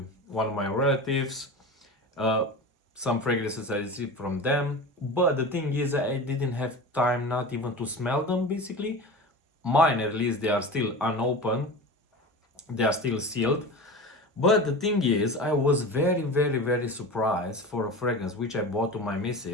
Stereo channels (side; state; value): both; normal; correlation 0.31